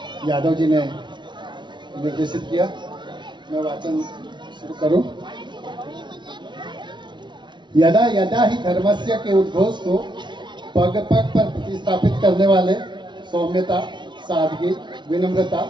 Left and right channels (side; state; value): left; late; 0.23 ms